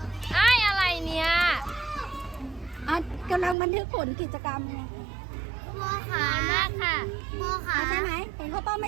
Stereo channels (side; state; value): left; drops out; at 3.6 s